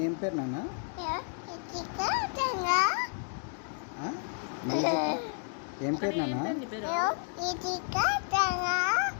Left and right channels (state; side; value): silent; right; 57 dB below the other